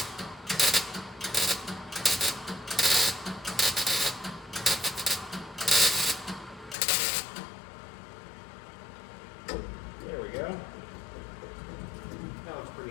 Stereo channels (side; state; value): right; drops out; at 6.8 s